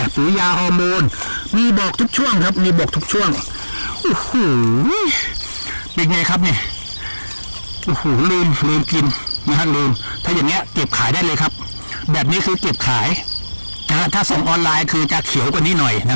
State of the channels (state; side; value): inverted; both; correlation -1.00